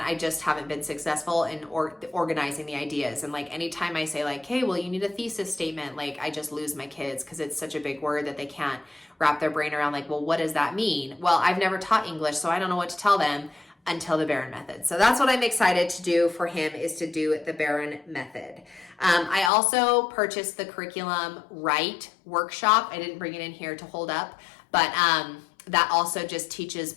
I just haven't been successful in organizing the ideas. And like anytime I say like, hey, well, you need a thesis statement, like I just lose my kids because it's such a big word that they can't wrap their brain around. Like, well, what does that mean? Well, I've never taught English, so I don't know what to tell them. until the Barron method. So that's what I'm excited to do for him, is to do the Barron method. I also purchased the curriculum Write workshop. I didn't bring it in here to hold up, but that also just teaches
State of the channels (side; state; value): right; drops out; at 19.5 s